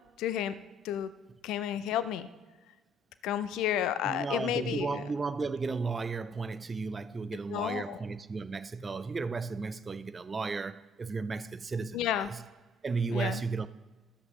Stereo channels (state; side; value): normal; both; correlation 0.62